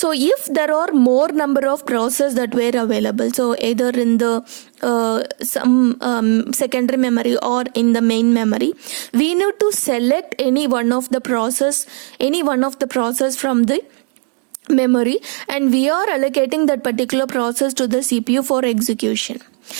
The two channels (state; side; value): quieter; left; 38.9 dB